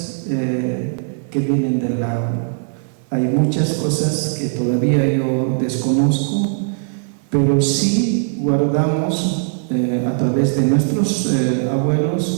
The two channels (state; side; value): silent; left; 57 dB below the other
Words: que vienen del lago. Hay muchas cosas que todavía yo desconozco, pero sí guardamos a través de nuestros